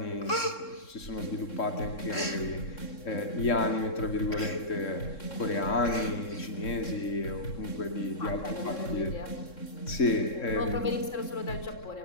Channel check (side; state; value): right; late; 3.7 ms